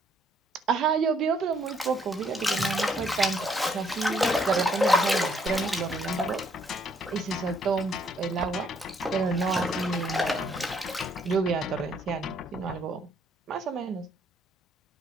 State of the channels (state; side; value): normal; both; correlation 0.68